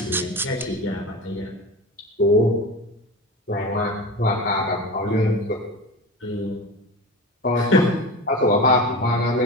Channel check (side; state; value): both; normal; correlation 0.28